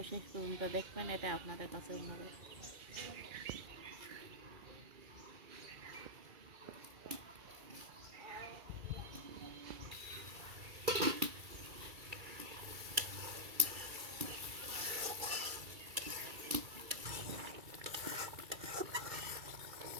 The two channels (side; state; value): left; late; 2.3 ms